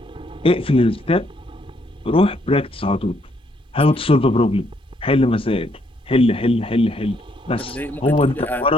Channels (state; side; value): normal; both; correlation 0.71